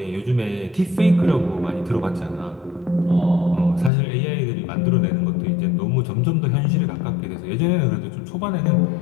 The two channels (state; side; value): drops out; right; at 3.9 s